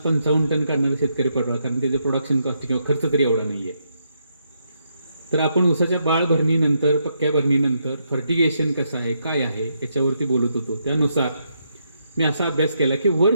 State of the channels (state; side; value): inverted; both; correlation -0.79